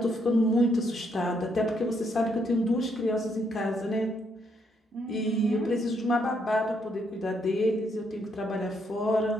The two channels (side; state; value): both; normal; correlation 0.74